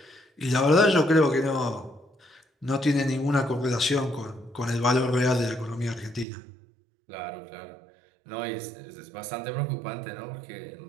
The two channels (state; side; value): drops out; left; at 6.2 s